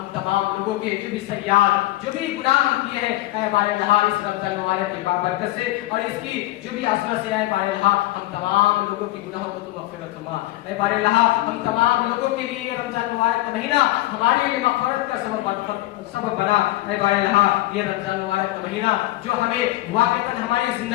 تمام لوگوں کے جو بھی سیئات، جو بھی گناہ ہم کیے ہیں، اے بار الہا اس رمضان مبارک کی بابرکت سے اور اس کی جو بھی عظمت سے، اے بار الہا ہم تمام لوگوں کے گناہوں کو تو مغفرت فرما۔ اے بار الہا ہم تمام لوگوں کے لیے یہ رمضان مبارک کا مہینہ ہمارے لیے مغفرت کا سبب بنا۔ اے بار الہا یہ رمضان مبارک کا مہینہ جو ہمیں واقعتاً ہماری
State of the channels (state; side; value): quieter; right; 17.4 dB